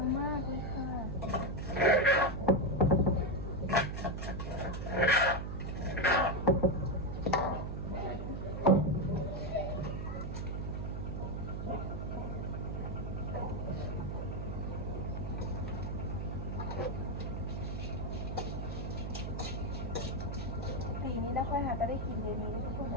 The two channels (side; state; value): right; noise; hum, 4 dB below the sound